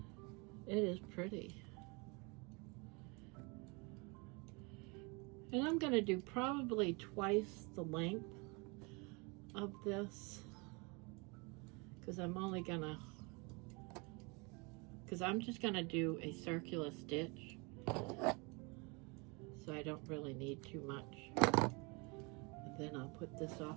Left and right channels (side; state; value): left; quieter; 29.6 dB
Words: is pretty. And I'm going to do probably twice the length of this, because I'm just going to do a circular stitch, so I don't really need too much. And then I'll put this